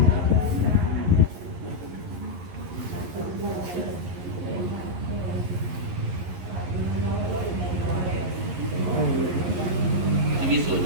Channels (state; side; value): late; left; 11 ms